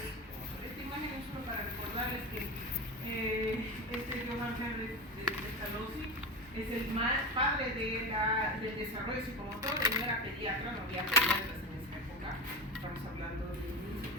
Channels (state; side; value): normal; both; correlation 0.22